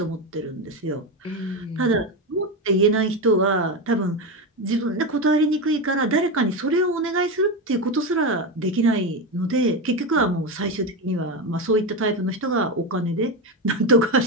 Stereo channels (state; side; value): normal; both; correlation 0.15